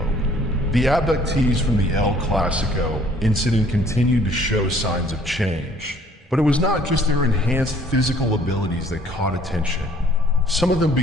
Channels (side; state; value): both; normal; correlation 0.58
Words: The abductees from the El Clásico incident continued to show signs of change. But it was not just their enhanced physical abilities that caught attention. Some of them